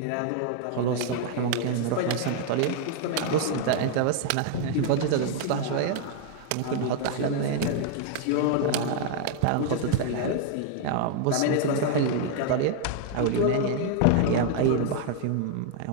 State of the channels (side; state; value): both; different; correlation 0.00